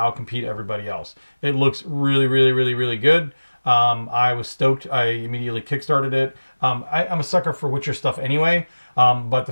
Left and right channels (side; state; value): both; inverted; correlation -1.00